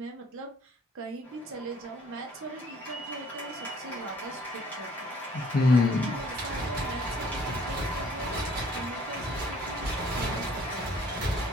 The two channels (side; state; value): both; normal; correlation 0.59